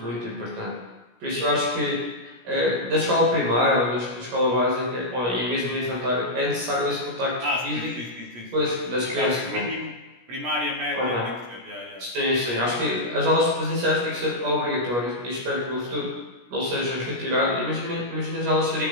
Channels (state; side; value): late; left; 17 ms